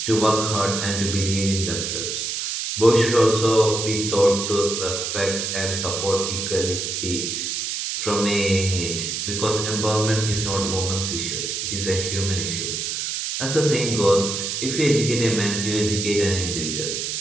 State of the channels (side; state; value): right; noise; hiss, 3 dB below the sound